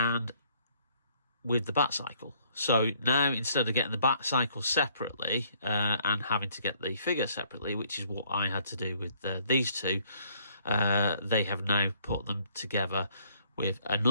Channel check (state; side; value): inverted; both; correlation -0.64